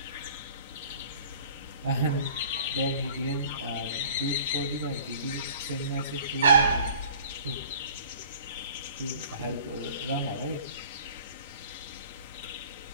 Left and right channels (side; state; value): both; inverted; correlation -0.49